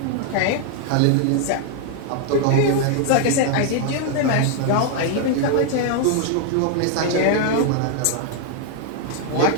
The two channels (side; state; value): both; different; correlation 0.00